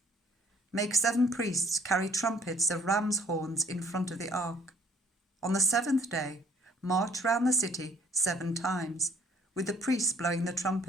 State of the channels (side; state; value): both; normal; correlation 0.58